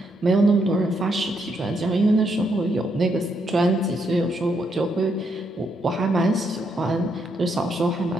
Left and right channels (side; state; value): both; normal; correlation 0.77